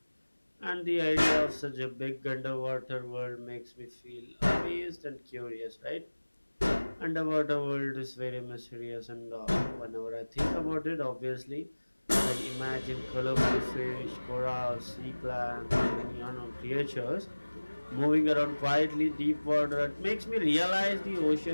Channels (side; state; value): both; inverted; correlation -1.00